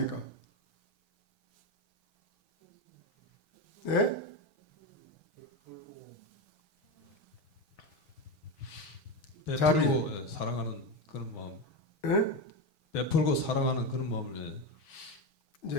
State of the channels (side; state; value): right; late; 6.2 ms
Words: 예? 베풀고 예, 사랑하는 그런 마음. 예? 베풀고 사랑하는 그런 마음을 예.